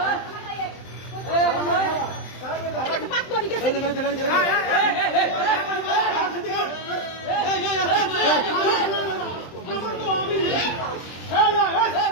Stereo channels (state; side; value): late; right; 23 ms